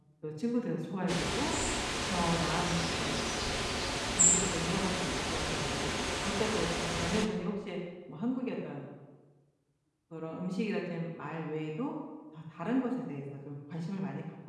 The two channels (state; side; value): identical; both; correlation 1.00